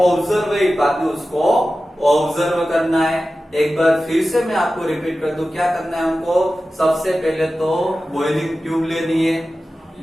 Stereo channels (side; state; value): both; normal; correlation 0.94